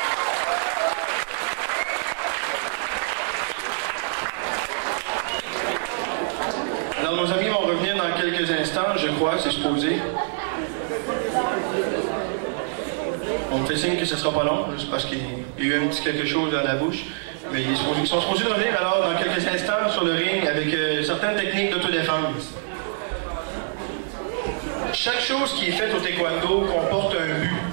Alors nos amis vont revenir dans quelques instants, je crois, c'est supposé. On me fait signe que ce ne sera pas long, juste parce qu'il y a eu un petit quelque chose dans la bouche. Mais ils sont supposés de revenir alors dans quelques instants sur le ring avec certaines techniques d'autodéfense. Chaque chose qui est faite au taekwondo comporte un but.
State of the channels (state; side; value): silent; left; digital silence